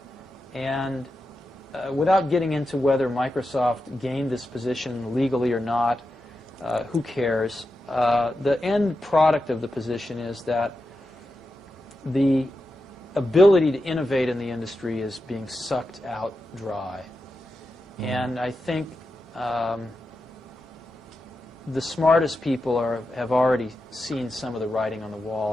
And without getting into whether Microsoft gained this position legally or not, who cares? The end product of the position is that the ability to innovate in the industry is being sucked out dry. And I think the smartest people have already seen some of the writing on the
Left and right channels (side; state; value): both; normal; correlation 0.89